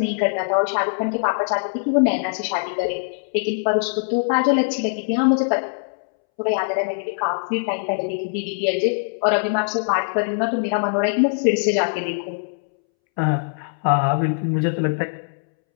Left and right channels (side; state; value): right; silent; 64 dB below the other